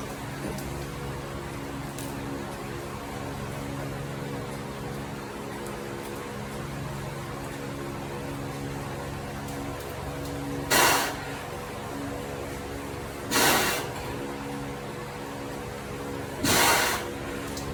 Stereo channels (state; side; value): identical; both; correlation 1.00